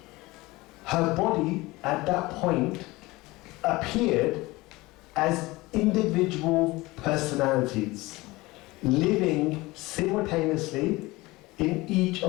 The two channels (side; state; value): right; quieter; 21.1 dB